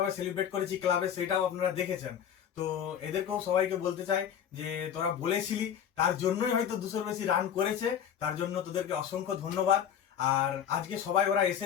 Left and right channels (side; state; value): right; quieter; 8.9 dB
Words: সেলিব্রেট করেছি ক্লাবে, সেটাও আপনারা দেখেছেন। তো এদেরকেও সবাইকে বলতে চাই যে তোরা বলেছিলি, তার জন্যই হয়তো 200-র বেশি রান করেছে, তার জন্য তোদেরকে অসংখ্য ধন্যবাদ। আর আজকে সবাই ওরা